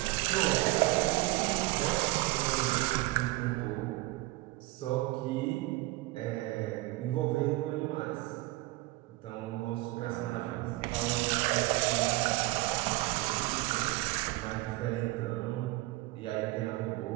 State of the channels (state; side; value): quieter; left; 20.4 dB